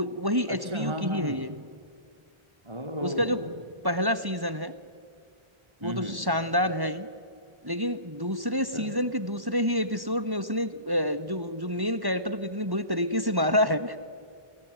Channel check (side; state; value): left; late; 1.1 ms